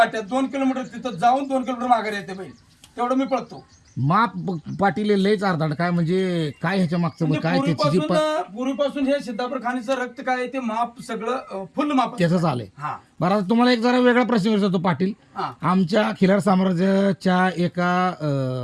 2 किलोमीटर तिथं जाऊन 2 किलोमीटर माघारी येते बैल, तेवढं मी पळतो. माप पाटील लयच अर्धाड काय म्हणजे काय ह्याच्या मागचं म्हणजे काय त्याची जी पूर्वीपासून हे सिद्धापूर खाणीचं रक्त काय आहे ते माप सगळं फुल माप. त्याच आलंय. हा बरं आता तुम्हाला एक जरा वेगळा प्रश्न विचारतो पाटील. हा आमच्या खिलार साम्राज्याच्या एका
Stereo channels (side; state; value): both; identical; correlation 1.00